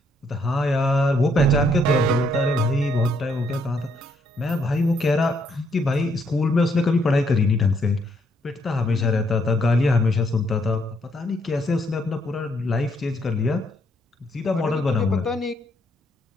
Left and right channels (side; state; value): both; normal; correlation 0.72